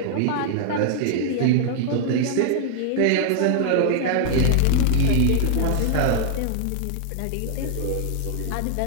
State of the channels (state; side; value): different; both; correlation -0.01